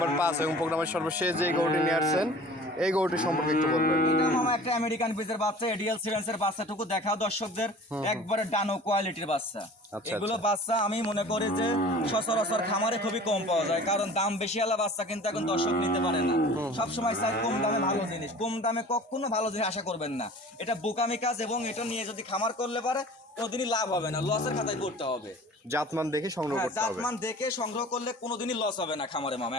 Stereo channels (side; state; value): both; normal; correlation 0.44